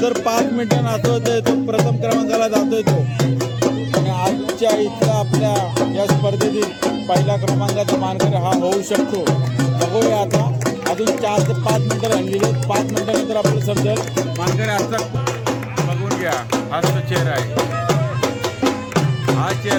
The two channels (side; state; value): both; identical; correlation 1.00